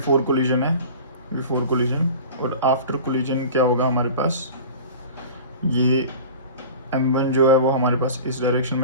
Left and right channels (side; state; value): both; inverted; correlation -0.37